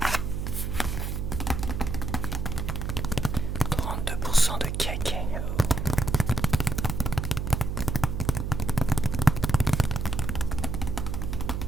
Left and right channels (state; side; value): noise; right; hum, 2 dB below the sound